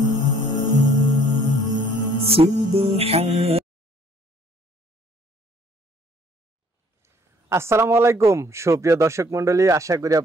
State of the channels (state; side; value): normal; both; correlation 0.59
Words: Subhan আসসালামু আলাইকুম সুপ্রিয় দর্শক মণ্ডলী, আশা করি